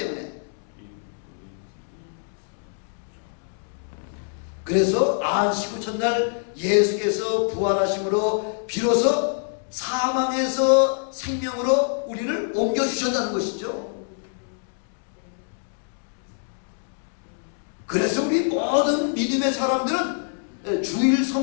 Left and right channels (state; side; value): silent; right; digital silence